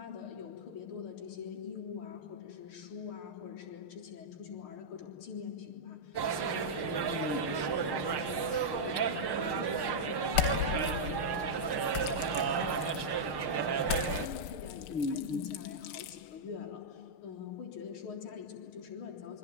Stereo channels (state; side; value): late; right; 6.5 ms